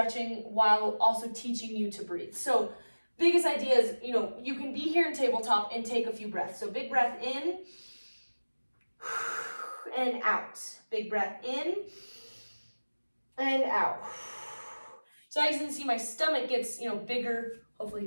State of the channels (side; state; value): both; inverted; correlation -1.00